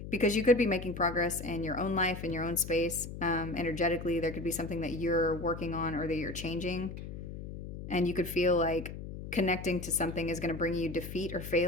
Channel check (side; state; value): left; noise; hum, 9 dB below the sound